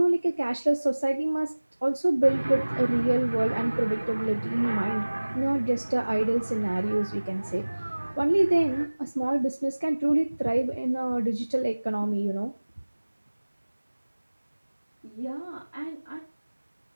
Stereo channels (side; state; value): both; inverted; correlation -1.00